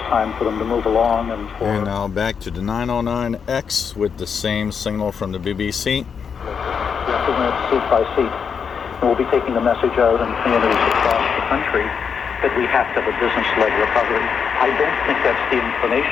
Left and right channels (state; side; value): quieter; right; 6.6 dB